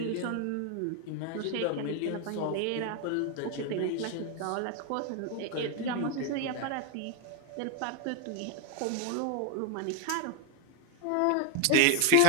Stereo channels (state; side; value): different; both; correlation 0.01